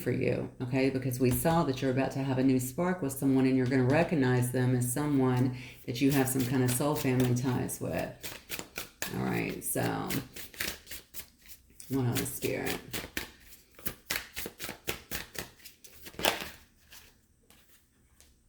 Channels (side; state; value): both; identical; correlation 1.00